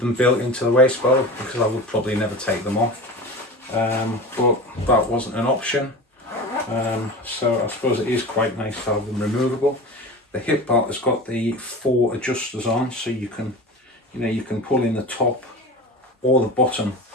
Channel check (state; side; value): normal; both; correlation 0.31